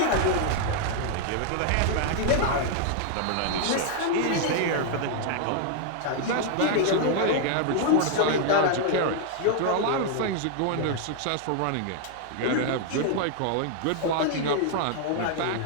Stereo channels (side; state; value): both; different; correlation 0.00